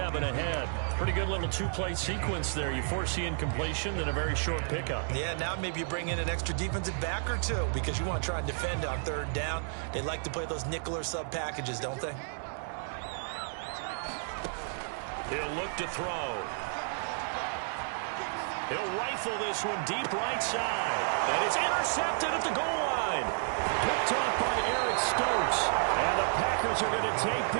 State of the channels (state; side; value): silent; left; digital silence